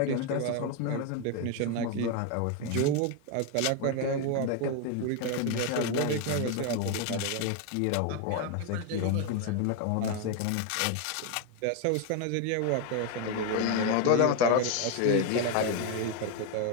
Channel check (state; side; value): different; both; correlation 0.01